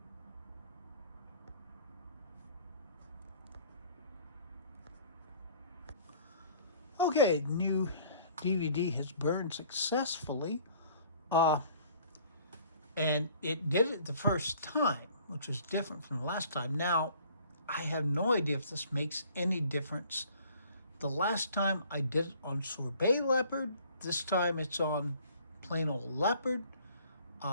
Okay, the new DVD has burned successfully, and it did it the first time, which was different from the last time. Now, I have no idea if this makes any difference. The last time I did it on Sorbet Leopard, this time it's on plain old Leopard.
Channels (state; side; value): inverted; both; correlation -0.54